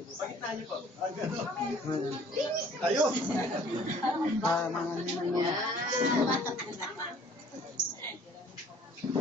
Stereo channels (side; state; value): both; normal; correlation 0.54